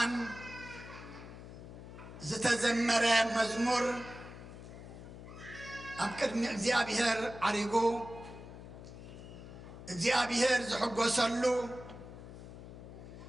زتزمر مزمور أبكرني እግዚአብሔር عريقو እግዚአብሔር زحقوسلو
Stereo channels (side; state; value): left; noise; hum, 13 dB below the sound